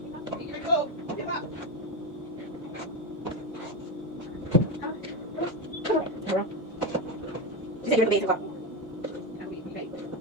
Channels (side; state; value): both; normal; correlation 0.14